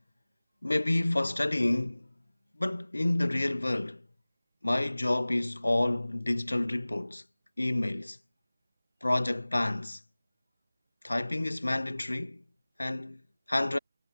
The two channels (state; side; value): inverted; both; correlation -1.00